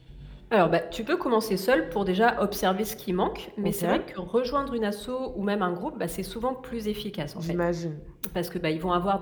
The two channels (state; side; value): identical; both; correlation 1.00